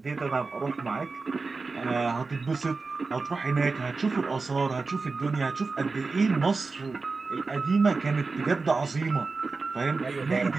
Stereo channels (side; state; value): left; quieter; 4.1 dB